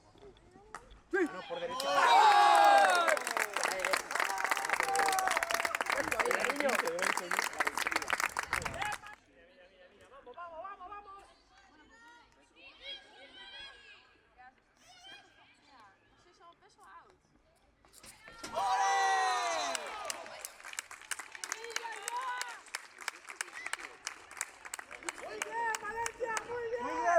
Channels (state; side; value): identical; both; correlation 1.00